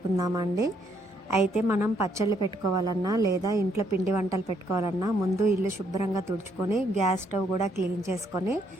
అయితే మనం పచ్చళ్ళు పెట్టుకోవాలన్నా లేదా ఇంట్లో పిండి వంటలు పెట్టుకోవాలన్నా ముందు ఇల్లు శుభ్రంగా తుడుచుకొని గ్యాస్ స్టవ్ కూడా క్లీన్ చేసుకొని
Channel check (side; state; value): both; normal; correlation 0.71